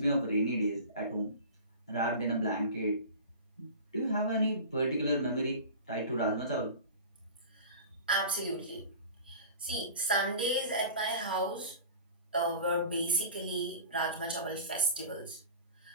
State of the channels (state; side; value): inverted; both; correlation -0.37